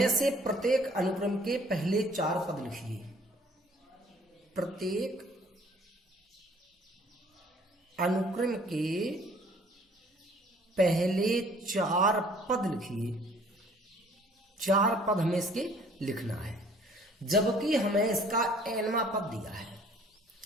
से प्रत्येक अनुक्रम के पहले 4 पद लिखिए। प्रत्येक अनुक्रम के पहले 4 पद लिखिए। 4 पद हमें इसके लिखना है, जबकि हमें इसका nवां पद दिया है।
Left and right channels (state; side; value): normal; both; correlation 0.56